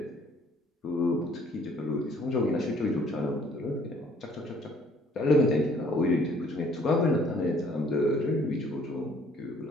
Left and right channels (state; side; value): normal; both; correlation 0.60